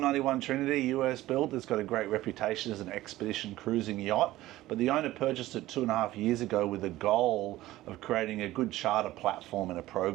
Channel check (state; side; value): quieter; left; 16.2 dB